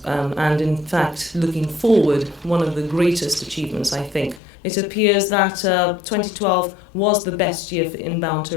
and in fact looking forward, one of the greatest achievements I think. It appears that 2012 was the best year for inbound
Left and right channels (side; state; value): right; drops out; at 4.4 s